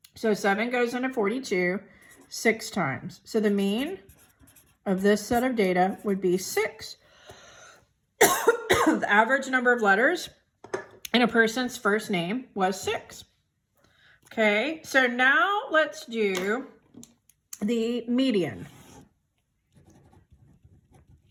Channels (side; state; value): both; identical; correlation 1.00